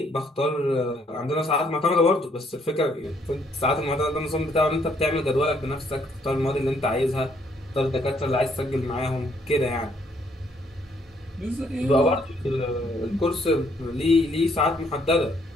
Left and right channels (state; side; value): normal; both; correlation 0.68